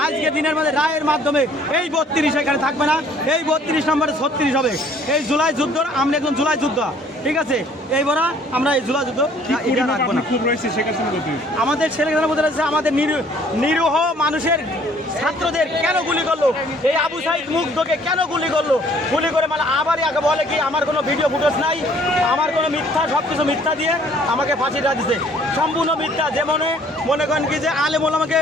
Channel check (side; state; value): both; normal; correlation 0.58